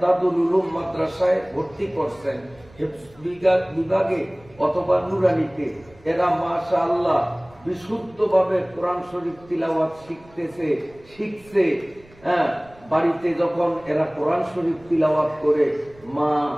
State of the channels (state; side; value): noise; right; rumble, 26 dB below the sound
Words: উলুম মাদ্রাসায় ভর্তি করছেন, হিফজ বিভাগে অথবা নুরানিতে। এরা মাশাআল্লাহ বিশুদ্ধভাবে কোরআন শরীফ তিলাওয়াত শিখছে। হ্যাঁ, বাড়িতে যখন এরা কোরআন শরীফ তিলাওয়াত করে, মা,